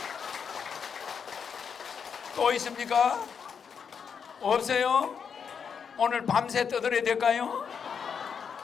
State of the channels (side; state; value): right; quieter; 6.7 dB